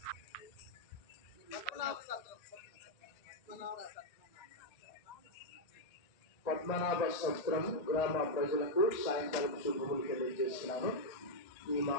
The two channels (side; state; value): right; late; 1.8 ms